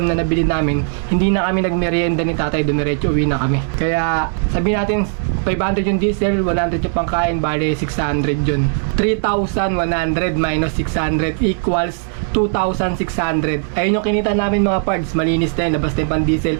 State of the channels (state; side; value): silent; left; 62 dB below the other